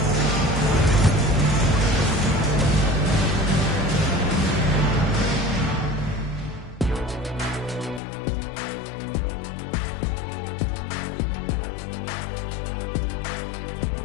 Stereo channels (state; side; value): drops out; right; at 8.0 s